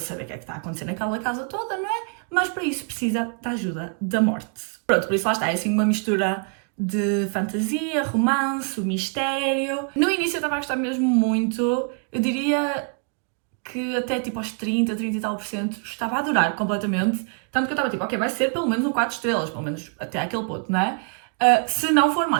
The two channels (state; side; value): quieter; left; 40.0 dB